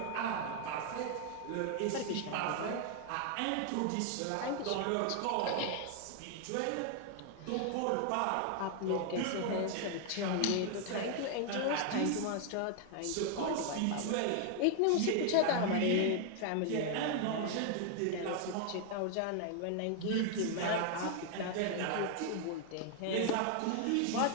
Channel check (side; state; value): both; different; correlation 0.00